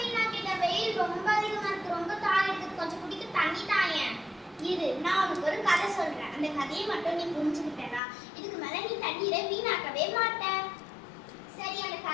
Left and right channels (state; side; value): drops out; right; at 8.0 s